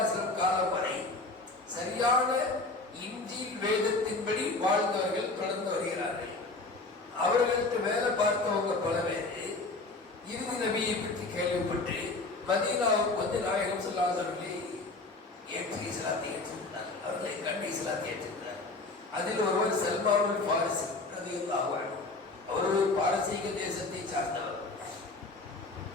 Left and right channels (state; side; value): quieter; right; 3.3 dB